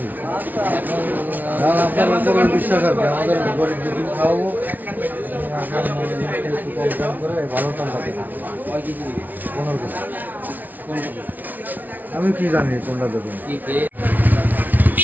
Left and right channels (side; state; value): left; late; 0.081 ms